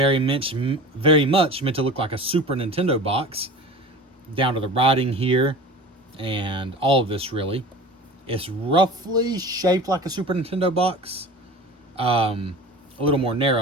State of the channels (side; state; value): both; normal; correlation 0.37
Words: much meant to look like a Super Nintendo box, down to the writing here and all of this really. It's roughly shaped like a Super Nintendo box. A little more